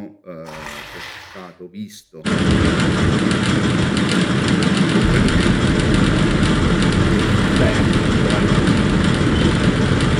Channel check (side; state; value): both; identical; correlation 1.00